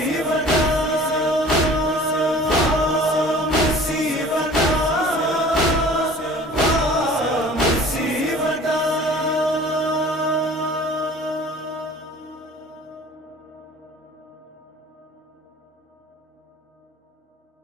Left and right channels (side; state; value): both; normal; correlation 0.47